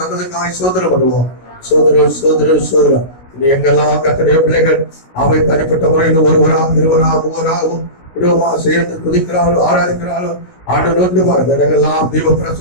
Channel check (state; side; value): late; right; 16 ms